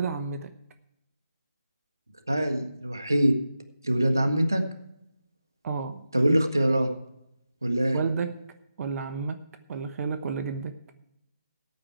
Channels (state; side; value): inverted; both; correlation -0.90